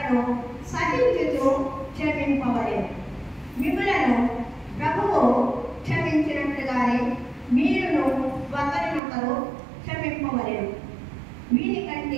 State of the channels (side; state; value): left; drops out; at 9.0 s